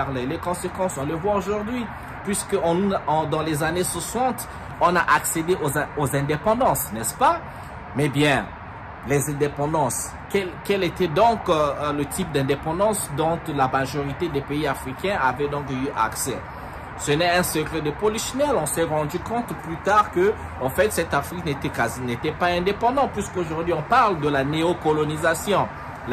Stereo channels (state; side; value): identical; both; correlation 1.00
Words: Les conséquences, on les voit aujourd'hui. Puisque dans les années 60, on a accédé aux indépendances, n'est-ce pas? Mais bien, les indépendances, quel était donc le type d'indépendance dont la majorité des pays africains avaient donc eu accès? Ce n'est un secret de polichinelle. On s'est rendu compte plus tard que, en fait, cette Afrique n'était pas indépendante, puisqu'aujourd'hui on parle de la néocolonisation.